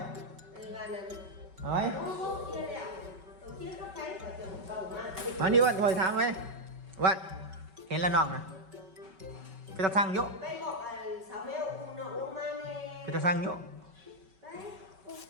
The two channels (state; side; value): late; left; 5.3 ms